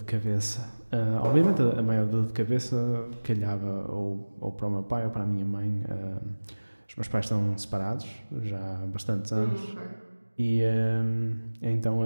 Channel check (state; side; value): inverted; both; correlation -1.00